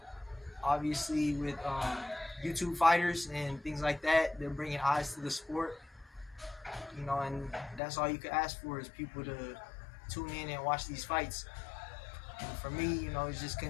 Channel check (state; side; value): drops out; right; at 7.8 s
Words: Obviously, with YouTube fighters and things like that, they're bringing eyes to the sport. And that's all you could ask for is people to tune in and watch these fights. And for me, it's just